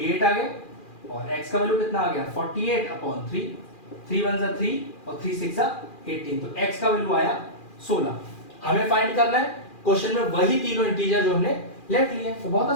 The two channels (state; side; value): late; right; 2.4 ms